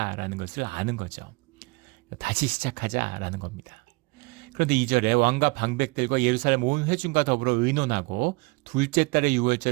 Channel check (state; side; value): quieter; left; 26.7 dB